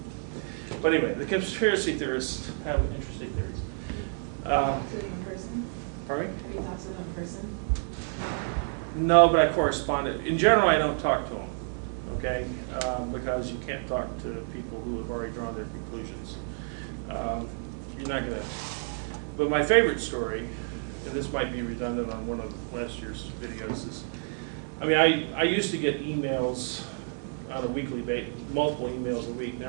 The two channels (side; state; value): left; silent; 57 dB below the other